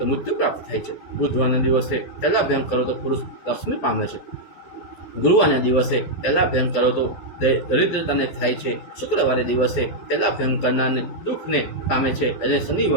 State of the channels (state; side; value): late; right; 12 ms